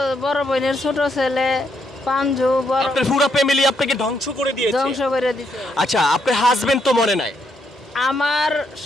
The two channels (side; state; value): both; normal; correlation 0.76